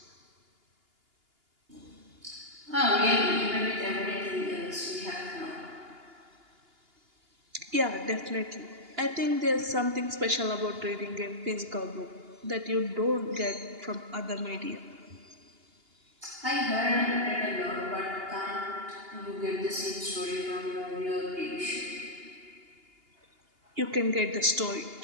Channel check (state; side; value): late; left; 2.8 ms